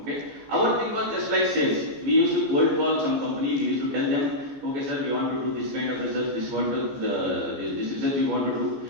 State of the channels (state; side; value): late; left; 14 ms